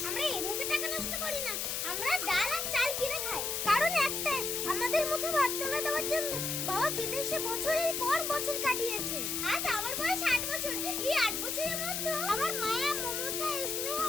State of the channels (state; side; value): noise; left; hiss, 1 dB below the sound